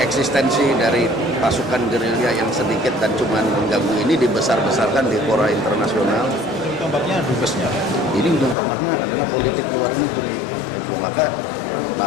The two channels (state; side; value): drops out; right; at 8.6 s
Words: dari pasukan gerilya yang sedikit dan cuma mengganggu ini dibesar-besarkan di fora internasional. Tombaknya dubesnya. Ini ujung tombaknya adalah politik luar negeri. Itu maka